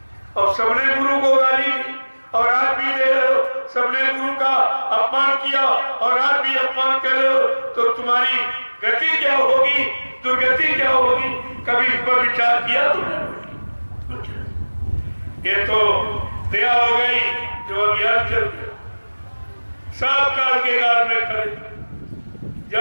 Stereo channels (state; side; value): inverted; both; correlation -1.00